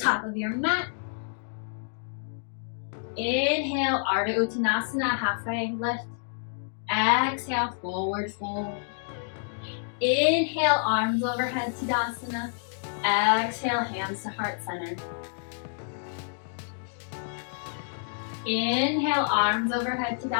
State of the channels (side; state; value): right; silent; digital silence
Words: of your mat. Inhale, Ardha Uttanasana, halfway lift. Exhale, forward fold. Inhale, arms overhead, Tadasana. Exhale, hands to heart center. Inhale, arms overhead,